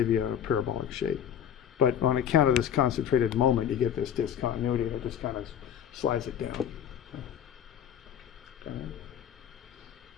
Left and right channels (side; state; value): right; quieter; 9.2 dB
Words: you a parabolic shape. But on account of this concentrated moment, you get this discontinuity, and it just kind of slides it down. Okay.